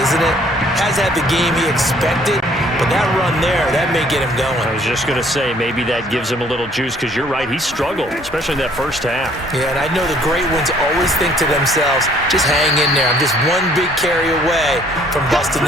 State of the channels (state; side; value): normal; both; correlation 0.60